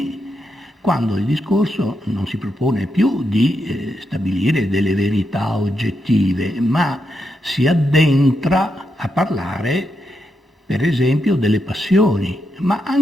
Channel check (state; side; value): normal; both; correlation 0.83